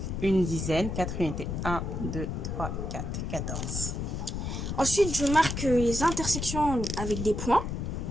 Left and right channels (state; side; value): noise; left; rumble, 3 dB below the sound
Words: une dizaine, 4 unités. 1, 2, 3, 4, 14. Ensuite, je marque les intersections avec des points.